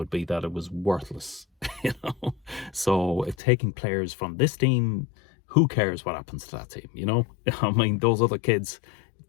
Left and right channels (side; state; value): right; drops out; at 3.4 s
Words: be that it was worthless, So taking players from this team, who cares what happens to that team, those other kids,